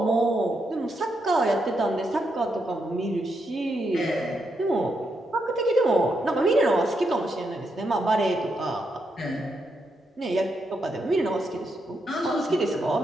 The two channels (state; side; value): normal; both; correlation 0.81